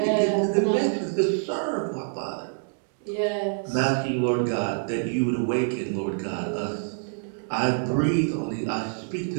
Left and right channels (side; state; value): left; silent; digital silence